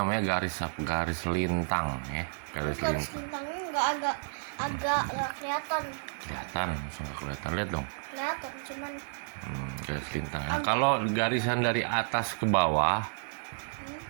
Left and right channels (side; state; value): left; silent; digital silence